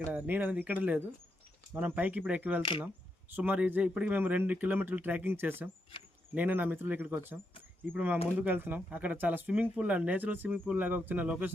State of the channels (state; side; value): normal; both; correlation 0.82